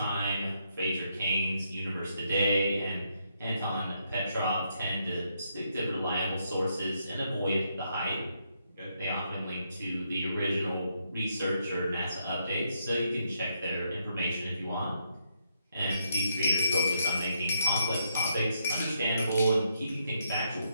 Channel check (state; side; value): inverted; both; correlation -0.77